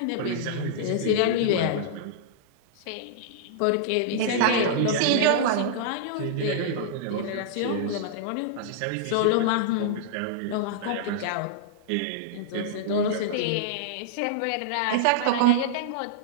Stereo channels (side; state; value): both; different; correlation -0.02